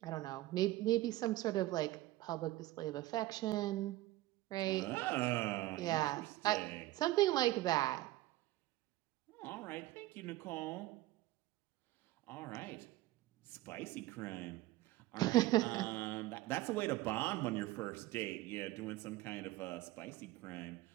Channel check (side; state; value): left; quieter; 17.1 dB